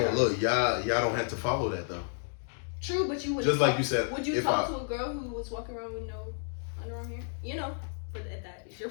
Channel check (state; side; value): silent; right; digital silence